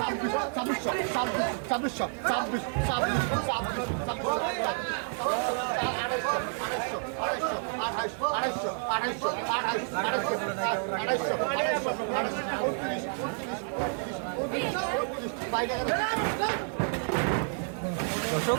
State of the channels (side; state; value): left; silent; 58 dB below the other